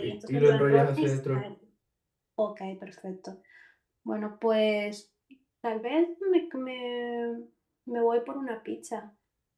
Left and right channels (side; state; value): both; identical; correlation 1.00